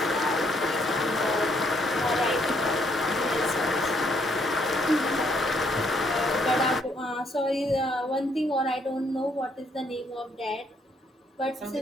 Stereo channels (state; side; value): normal; both; correlation 0.70